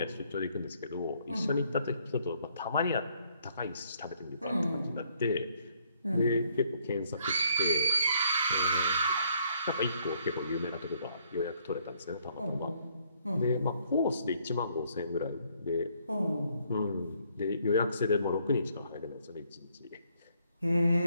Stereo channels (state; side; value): inverted; both; correlation -0.68